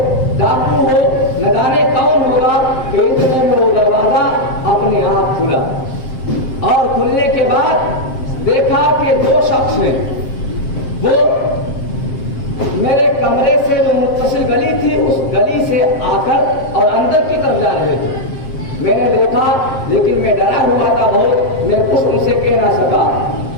ڈاکو ہو، نہ جانے کون ہوگا کہ اتنے میں وہ دروازہ اپنے آپ کھلا، اور کھلنے کے بعد دیکھا کہ 2 شخص ہیں، وہ میرے کمرے سے جو متصل گلی تھی اس گلی سے آ کر اور اندر کی طرف جا رہے تھے۔ میں نے دیکھا لیکن میں ڈرا ہوا تھا بہت، میں کچھ ان سے کہہ نہ سکا۔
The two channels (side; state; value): right; late; 7.6 ms